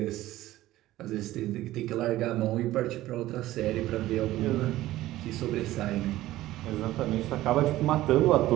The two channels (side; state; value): left; quieter; 15.7 dB